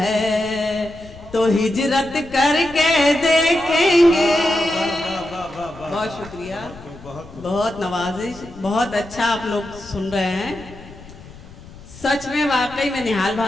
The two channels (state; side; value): noise; left; rumble, 18 dB below the sound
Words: तो हिजरत करके देखेंगे। बहुत शुक्रिया, बहुत नवाजिश, बहुत अच्छा आप लोग सुन रहे हैं। सच में वाकई में निहाल